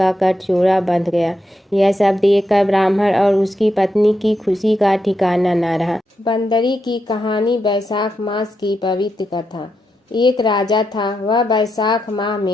गठजोड़ा बंध गया। यह सब देखकर ब्राह्मण और उसकी पत्नी की खुशी का ठिकाना न रहा। बंदरी की कहानी। वैशाख मास की पवित्र कथा। एक राजा था। वह वैशाख माह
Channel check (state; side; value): normal; both; correlation 0.84